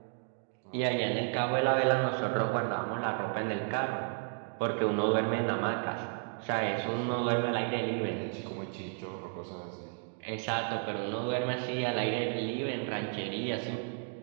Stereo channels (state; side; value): silent; left; 56 dB below the other